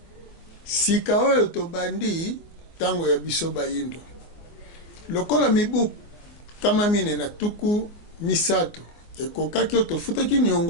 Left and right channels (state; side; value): late; right; 24 ms